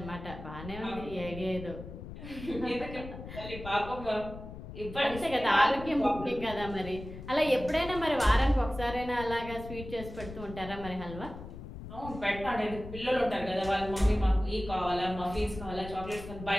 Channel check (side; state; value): left; noise; rumble, 12 dB below the sound